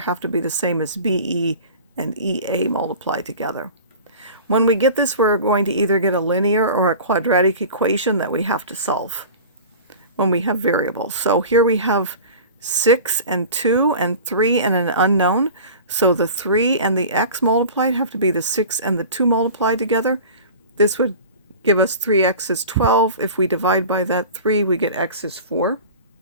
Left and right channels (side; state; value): both; inverted; correlation -0.37